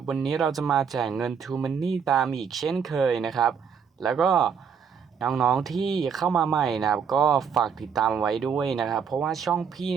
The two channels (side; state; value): left; quieter; 6.8 dB